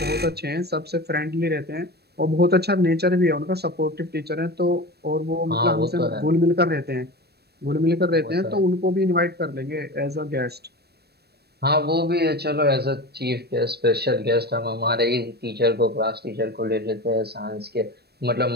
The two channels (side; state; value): left; late; 0.47 ms